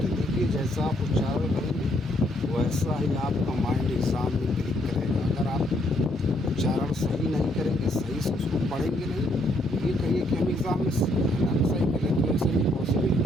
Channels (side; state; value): both; normal; correlation 0.71